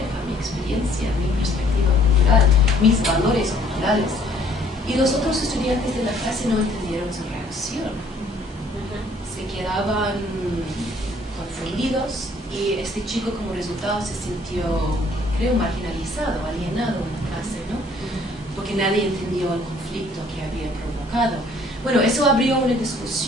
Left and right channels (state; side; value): normal; both; correlation 0.60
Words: mi experiencia, mi perspectiva cultural, mis valores culturales. Y los otros estudiantes de la clase no entendieron su reacción. Se quedaban confundidos y este chico como resultado se sintió, creo, marginalizado, alienado en la clase, ¿no? Porque nadie entendió el conflicto que había provocado. Bueno, eso abrió una